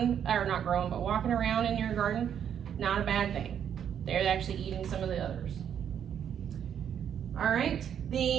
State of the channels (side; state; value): left; quieter; 8.8 dB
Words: or not growing, but walking around in your garden. Not a bad thing. They're actually eating some of the others. All right,